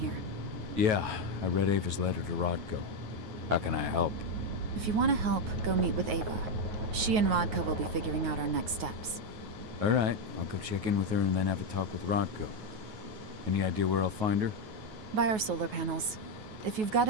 Yeah, I read Ava's letter to Rodko. How can I help? If you want to help, go meet with Ava. She and Rodko will be figuring out our next steps. All right, I'll go check in with her and then have a talk with Rodko. Any idea where I'll find her? By our solar panels. If you've got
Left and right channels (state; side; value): late; left; 9.3 ms